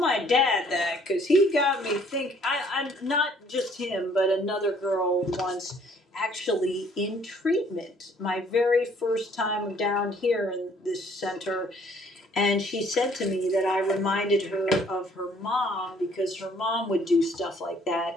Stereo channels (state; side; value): normal; both; correlation 0.60